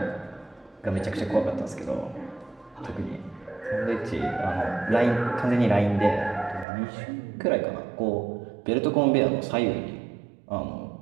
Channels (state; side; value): drops out; left; at 6.7 s